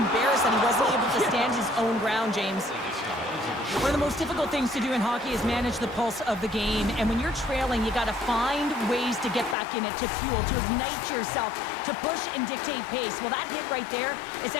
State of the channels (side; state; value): right; drops out; at 9.6 s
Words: that he wasn't able to stand his own ground, James. One of the most difficult things to do in hockey is manage the pulse of the game, and when you're trailing, you got to find ways to get back in it, to fuel, to ignite yourself, to push and dictate pace. Well, that hit right there is